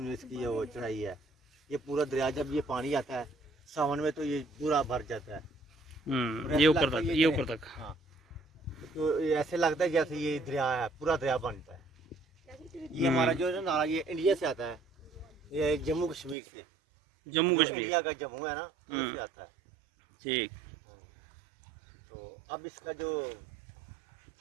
इसकी वो चढ़ाई है। ये पूरा दरिया जब ये पानी आता है सावन में तो ये पूरा भर जाता है। ये ऊपर तक। हाँ, तो ऐसे लगता है जैसे ये दरिया है, पूरा दरिया बनता है। ये हमारा जो है ना नाला, ये इंडिया से आता है, ये जम्मू कश्मीर से। जम्मू कश्मीर इंडिया का जम्मू है ना, उससे आता है। ठीक। तो अब इसका जो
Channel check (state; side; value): drops out; left; at 16.4 s